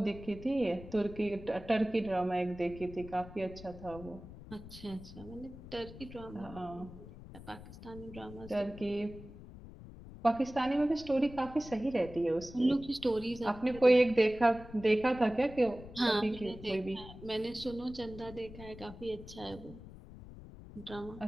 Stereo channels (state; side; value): noise; left; rumble, 15 dB below the sound